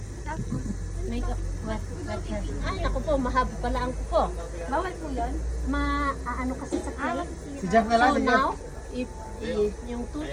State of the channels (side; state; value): both; identical; correlation 1.00